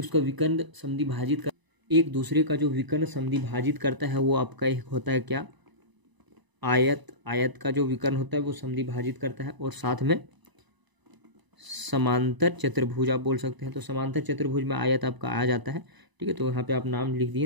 उसका विकर्ण समद्वि भाजित कर, एक दूसरे का जो विकर्ण समद्वि भाजित करता है वो आपका एक होता है क्या, आयत। आयत का जो विकर्ण होता है वो समद्वि भाजित करता है, और साथ में समांतर चतुर्भुज आप बोल सकते हैं। तो समांतर चतुर्भुज में आयत आपका आ जाता है। ठीक है, तो यहाँ पे आप नाम लिख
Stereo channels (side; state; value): left; late; 1.0 ms